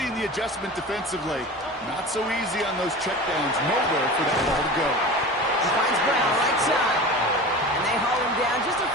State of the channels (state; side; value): normal; both; correlation 0.33